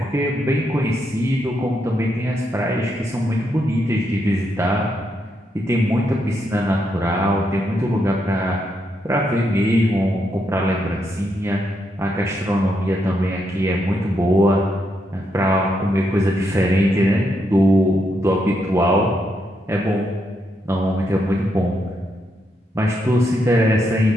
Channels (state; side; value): normal; both; correlation 0.79